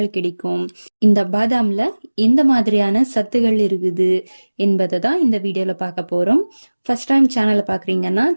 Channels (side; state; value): both; inverted; correlation -1.00